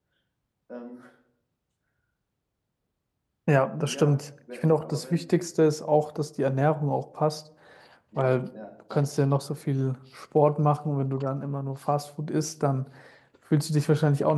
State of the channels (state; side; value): identical; both; correlation 1.00